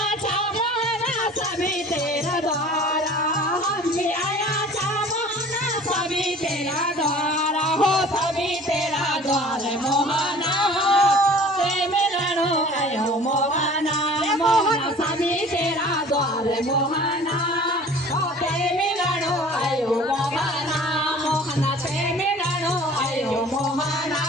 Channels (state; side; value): normal; both; correlation 0.46